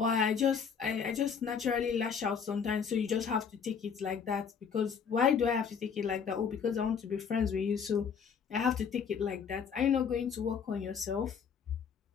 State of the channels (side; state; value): right; quieter; 6.7 dB